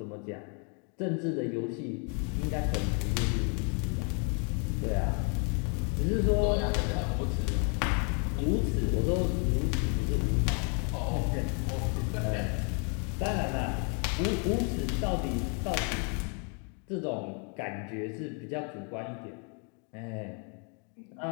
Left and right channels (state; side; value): quieter; right; 37.9 dB